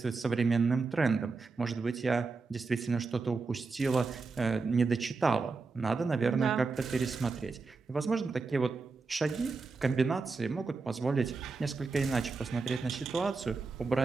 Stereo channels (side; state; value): left; quieter; 4.3 dB